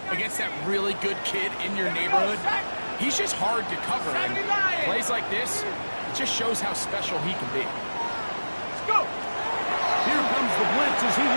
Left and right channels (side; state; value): both; inverted; correlation -1.00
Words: against that really good kid in your neighborhood. He's just hard to cover. And plays like this, it just shows how special he can be. Let's go. Here comes the blitz as he